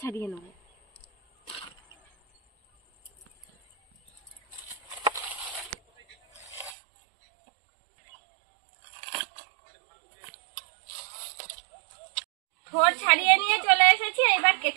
ছাড়িয়ে নেব। থোড় ছাড়িয়ে নিয়ে চলে এসেছি, এবার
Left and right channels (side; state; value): left; drops out; at 6.8 s